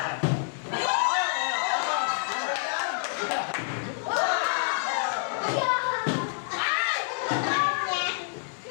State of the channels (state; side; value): silent; right; digital silence